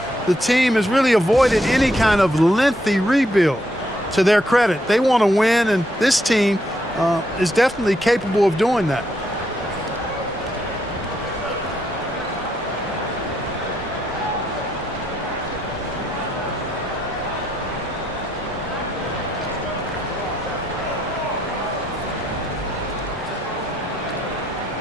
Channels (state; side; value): normal; both; correlation 0.76